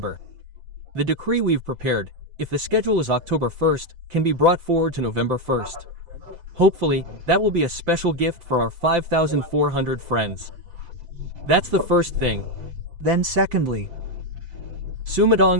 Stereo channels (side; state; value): left; late; 5.8 ms